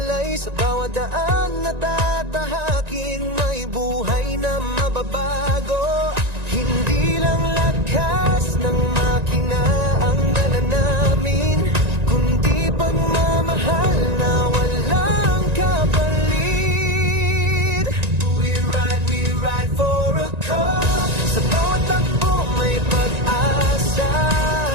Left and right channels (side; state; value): left; late; 1.9 ms